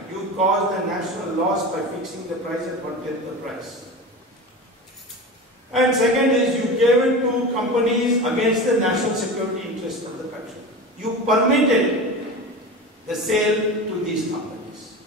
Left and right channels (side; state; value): both; normal; correlation 0.29